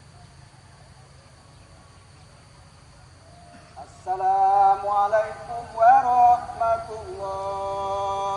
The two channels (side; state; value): both; identical; correlation 1.00